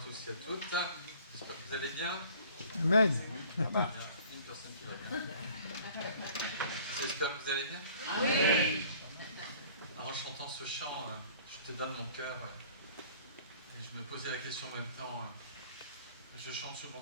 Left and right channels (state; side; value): inverted; both; correlation -0.51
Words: et à toutes. J'espère que vous allez bien. Amen. Il y a une personne qui va bien. J'espère que vous allez bien. Oui. En chantant ce chant, je te donne mon cœur. Et je me posais la question en même temps. Je chante souvent